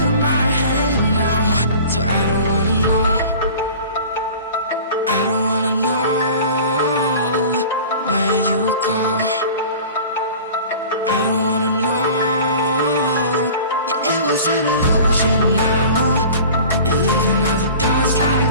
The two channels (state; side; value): inverted; both; correlation -0.41